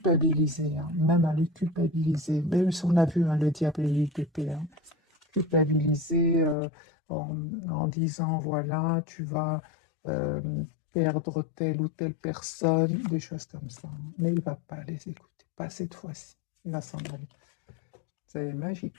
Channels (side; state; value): right; drops out; at 6.6 s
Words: hein, même à le culpabiliser. Même si on a vu, hein, le diable et l'UTP, hein, culpabiliser en disant, voilà, tu vas euh, perdre telle ou telle personne, des choses comme ça, hein. Mais il ne va pas les écouter, pas cette fois-ci. Il va s'en aller. C'est